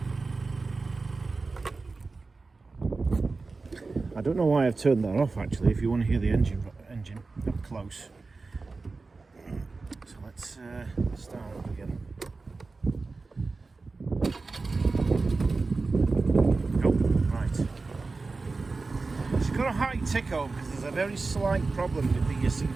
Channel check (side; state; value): left; quieter; 3.9 dB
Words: I don't know why I've turned that off actually, if you want to hear the engine up close. So let's start up again. Oh, right. It's got a high tick over because there's a very slight problem with the